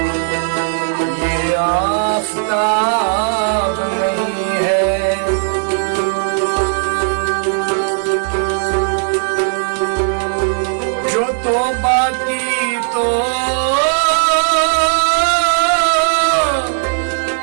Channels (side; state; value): left; silent; digital silence